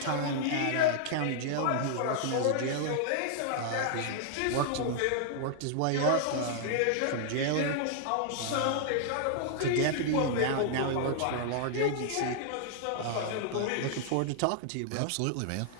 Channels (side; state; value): both; different; correlation -0.01